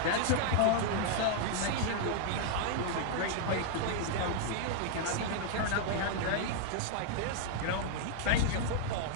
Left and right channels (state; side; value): different; both; correlation 0.00